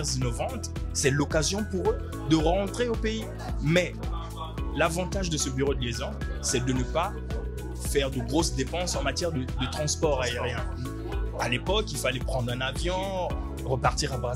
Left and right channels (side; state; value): both; identical; correlation 1.00